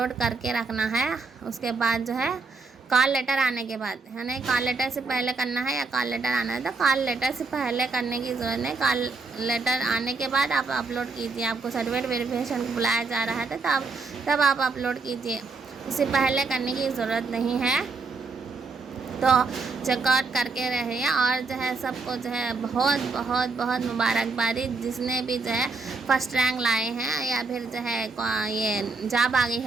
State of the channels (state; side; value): quieter; left; 4.0 dB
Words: करके रखना है। उसके बाद जो है कॉल लेटर आने के बाद, यानी कॉल लेटर से पहले करना है या कॉल लेटर आना है, तो कॉल लेटर से पहले करने की ज़रूरत नहीं। कॉल लेटर आने के बाद आप अपलोड कीजिए। आपको सर्टिफिकेट वेरिफिकेशन को बुलाया जा रहा है, तो तब आप अपलोड कीजिए, उससे पहले करने की ज़रूरत नहीं है। तो चेकआउट करके रहिए। और जो है सबको जो है बहुत बहुत बहुत मुबारकबादी, जिसने भी जो है फर्स्ट रैंक लाए हैं या फिर जो है ये जॉब आ गई